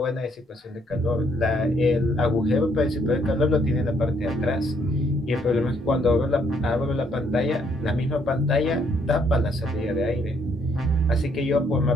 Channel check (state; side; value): normal; both; correlation 0.69